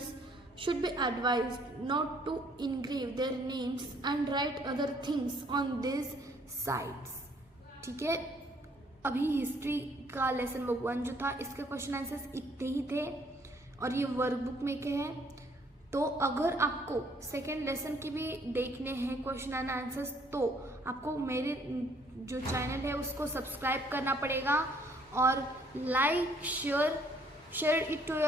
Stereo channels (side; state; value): both; normal; correlation 0.63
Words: should be advised not to engrave their names and write other things on these sites. ठीक है. अभी history का lesson 1 जो था इसके question answers इतने ही थे और ये वर्कबुक में के हैं। तो अगर आपको सेकेंड लेसन की भी देखने हैं क्वेश्चन एंड आंसर्स तो आपको मेरे जो चैनल है उसको सब्सक्राइब करना पड़ेगा और like share it to